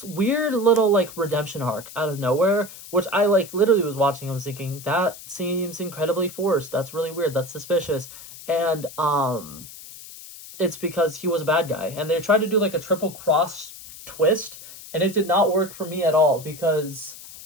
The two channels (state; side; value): noise; left; hiss, 16 dB below the sound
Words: weird little like redemption arc out of nowhere, which I like literally was watching and was thinking, that seems incredibly forced. That's really weird. That's suspicious. And it's because he was a bad guy, and they tried to do like a triple cross twist, and it did not work for me at all, because